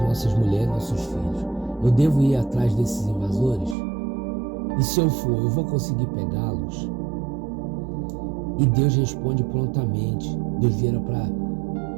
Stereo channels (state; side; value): drops out; left; at 3.8 s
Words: nossas mulheres, nossos filhos. Eu devo ir atrás desses invasores? E se eu for, eu vou conseguir pegá-los? E Deus responde prontamente. Deus vira para